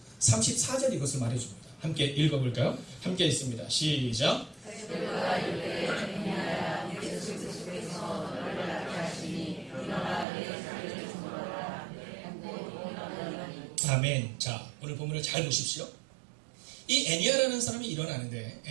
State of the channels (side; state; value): left; drops out; at 10.2 s